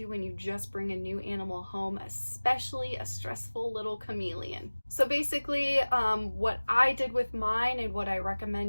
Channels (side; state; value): both; inverted; correlation -1.00